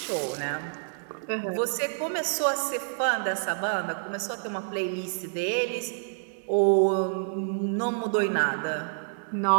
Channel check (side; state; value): left; silent; digital silence